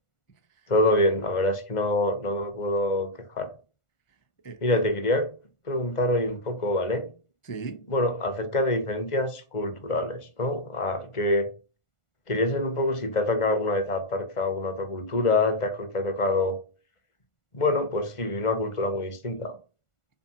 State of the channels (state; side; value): late; right; 1.4 ms